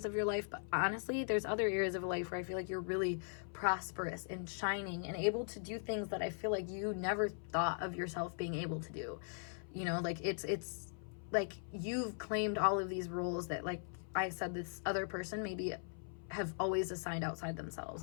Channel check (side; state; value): right; silent; 51 dB below the other